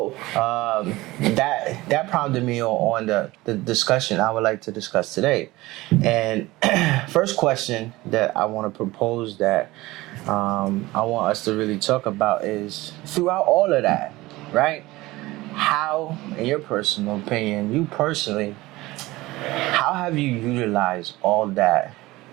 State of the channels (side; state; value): left; quieter; 19.4 dB